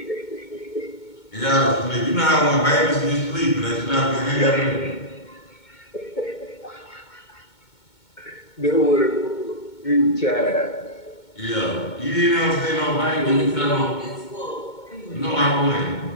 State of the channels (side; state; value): right; late; 2.2 ms